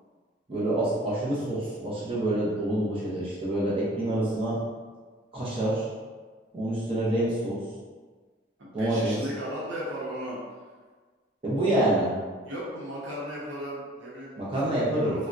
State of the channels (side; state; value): both; normal; correlation 0.51